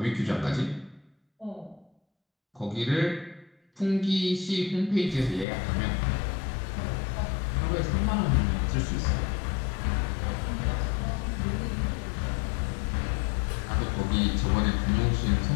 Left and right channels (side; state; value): right; drops out; at 5.5 s